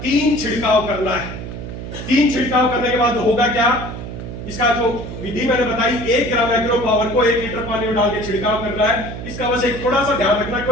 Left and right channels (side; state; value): right; noise; hum, 9 dB below the sound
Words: 3 छिड़काव करना है। 3 छिड़काव करने के बाद होगा क्या, इसका जो विधि मैंने बताई, 1 ग्राम एग्रो पावर को 1 लीटर पानी में डाल के छिड़काव करना है। इसका बस एक थोड़ा सा ध्यान रखना,